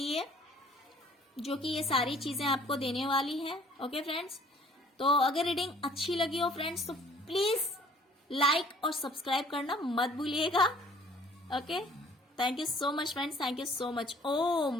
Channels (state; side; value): normal; both; correlation 0.55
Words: जो कि ये सारी चीजें आपको देने वाली है। ओके फ्रेंड्स, तो अगर रीडिंग अच्छी लगी हो फ्रेंड्स तो प्लीज लाइक और सब्सक्राइब करना मत भूलिएगा। Okay, thank you so much friends, thank you so much.